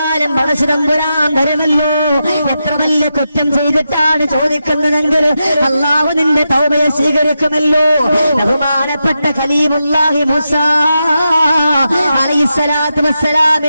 പടച്ചതമ്പുരാൻ തരുമല്ലോ. എത്ര വലിയ കുറ്റം ചെയ്തിട്ടാണ് ചോദിക്കുന്നതെങ്കിൽ അല്ലാഹു നിന്റെ തൗബയെ സ്വീകരിക്കുമല്ലോ. ബഹുമാനപ്പെട്ട ഖലീലുല്ലാഹി മൂസാ അലൈഹിസ്സലാത്തു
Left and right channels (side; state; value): both; inverted; correlation -0.87